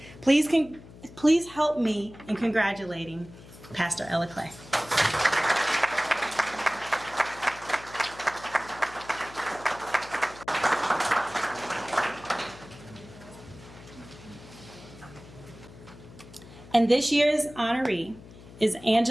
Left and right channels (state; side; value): noise; left; hum, 19 dB below the sound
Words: Please help me in congratulating Pastor Ella Clay. And this year's honoree is